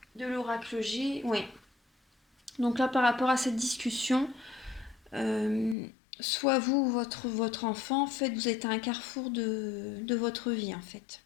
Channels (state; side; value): drops out; right; at 5.8 s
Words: de l'oracle G. Oui. Donc là, par rapport à cette discussion, euh, soit vous ou votre enfant, en fait, vous êtes à un carrefour de votre vie, en fait.